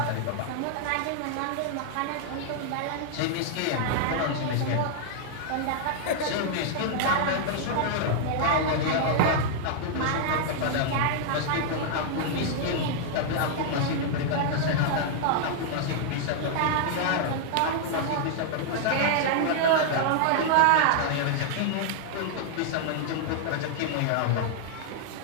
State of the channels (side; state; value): both; different; correlation -0.01